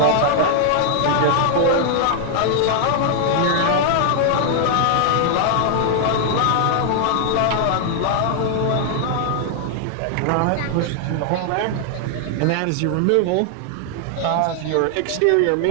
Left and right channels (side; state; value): both; different; correlation 0.00